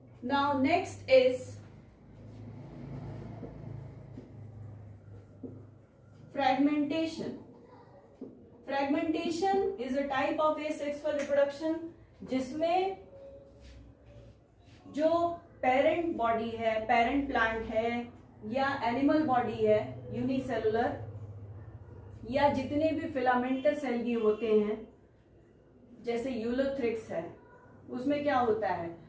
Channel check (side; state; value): both; identical; correlation 1.00